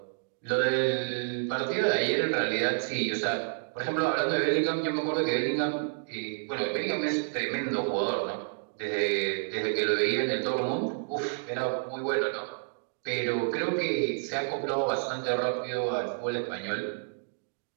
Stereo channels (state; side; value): silent; left; digital silence